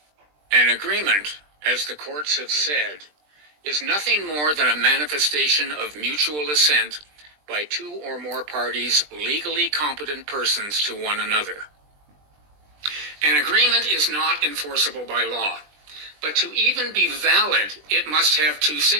An agreement, as the courts have said, is nothing more than a manifestation of mutual assent by two or more parties, legally competent persons to one another. An agreement is not enforceable by law, but to even be valid, it must have two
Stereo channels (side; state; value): left; late; 20 ms